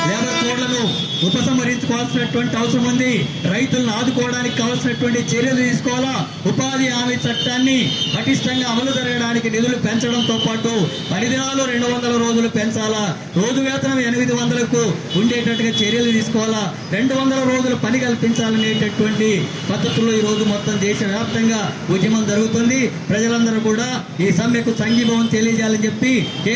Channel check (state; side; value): identical; both; correlation 1.00